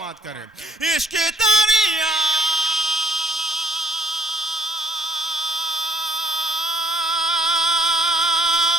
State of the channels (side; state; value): both; normal; correlation 0.64